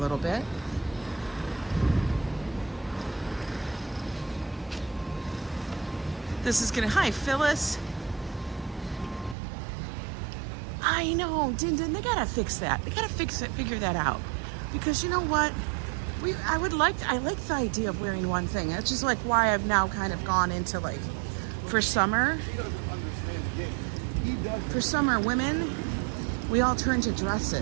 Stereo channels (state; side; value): drops out; left; at 9.3 s